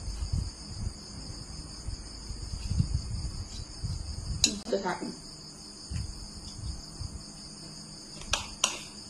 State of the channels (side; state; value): both; identical; correlation 1.00